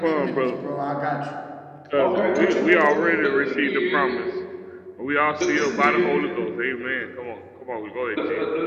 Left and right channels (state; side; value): identical; both; correlation 1.00